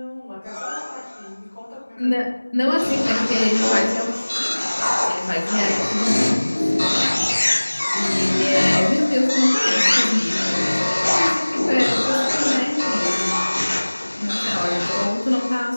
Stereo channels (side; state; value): both; inverted; correlation -1.00